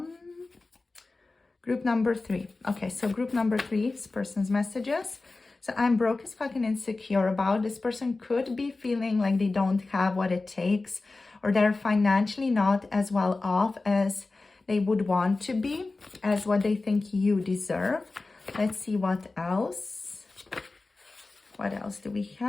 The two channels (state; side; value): quieter; right; 3.5 dB